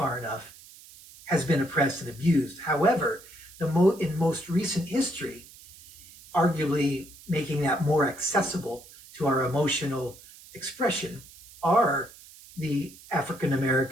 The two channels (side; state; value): right; noise; hiss, 21 dB below the sound